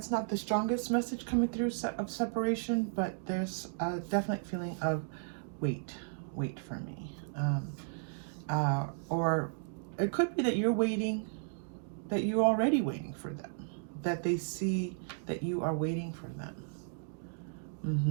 not the strongest message coming through of separation, but there's a definite feeling of wait for me. Or it could be that you're waiting, that you're already waiting for them, that they see that you are waiting for them.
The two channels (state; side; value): silent; left; digital silence